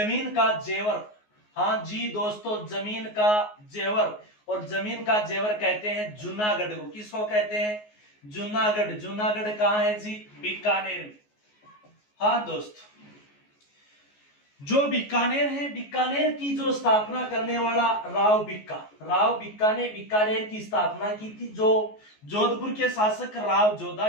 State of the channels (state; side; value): late; right; 14 ms